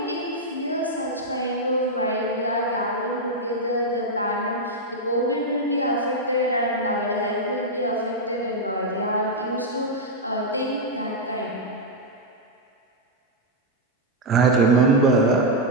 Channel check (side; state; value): both; normal; correlation -0.02